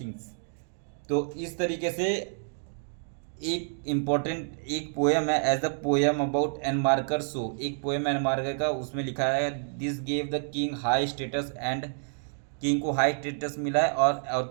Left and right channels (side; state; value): left; silent; digital silence